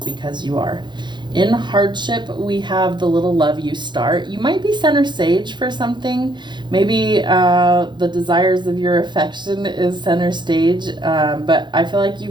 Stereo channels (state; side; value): late; left; 0.22 ms